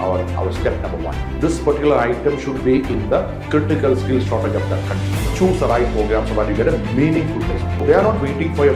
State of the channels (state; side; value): identical; both; correlation 1.00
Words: step number one. This particular item should be in the critical skill shortage of that country. Choose the right program so that you get a meaningful placement. They are not waiting for your